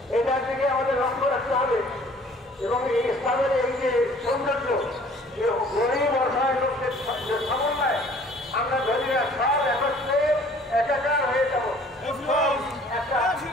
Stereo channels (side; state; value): both; normal; correlation 0.53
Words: এটার দিকে আমাদের লক্ষ্য রাখতে হবে এবং এই ইসলামের এই যে সৌন্দর্য গরিব অসহায় লোকদের সমন্বয় আমরা ধরি না সব একত্রে একাকার হয়ে যাব একটা